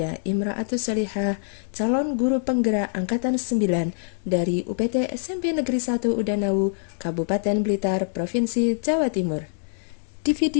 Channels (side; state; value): right; silent; digital silence